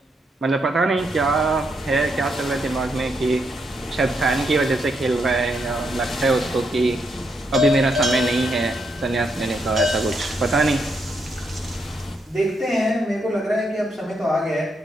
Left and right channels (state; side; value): normal; both; correlation 0.79